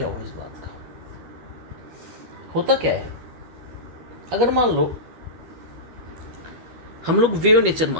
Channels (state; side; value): late; left; 12 ms